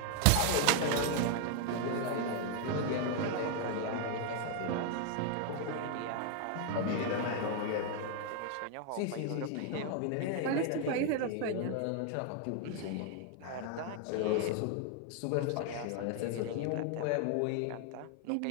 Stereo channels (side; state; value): both; different; correlation 0.00